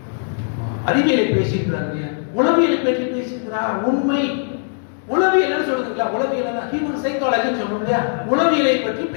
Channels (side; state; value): right; silent; digital silence